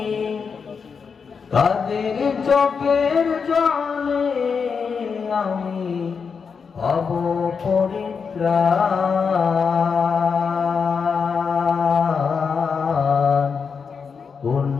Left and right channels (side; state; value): right; quieter; 5.8 dB